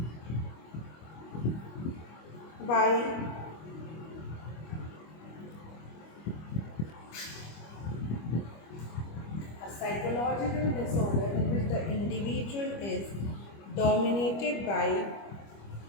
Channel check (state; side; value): late; right; 25 ms